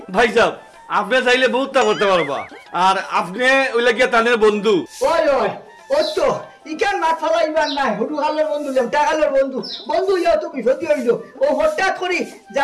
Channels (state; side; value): identical; both; correlation 1.00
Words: ভাই সাহেব আপনি চাইলে বহুতটা করতে পারবা আর আপনি ওই লাগিয়া তাদের বন্ধু ওই ও তো ইকান মাছ ফলাইবার নাই হুডু খালের বন্ধু লেমটা খালের বন্ধু ইয়া তো বিপত্তি হইল ও হঠাৎ করি